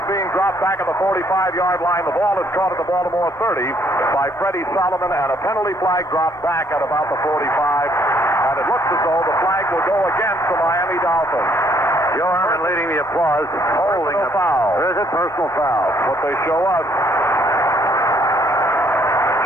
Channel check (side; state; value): both; normal; correlation 0.66